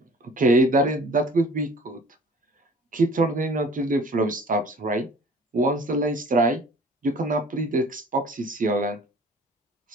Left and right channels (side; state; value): both; normal; correlation 0.48